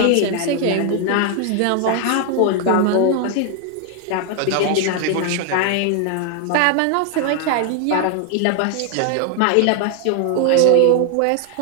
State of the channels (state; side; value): different; both; correlation 0.00